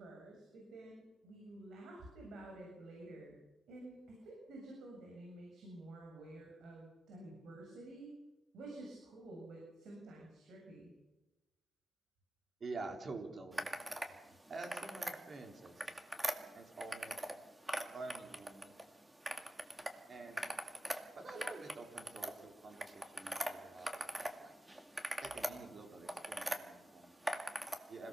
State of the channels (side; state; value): both; normal; correlation 0.93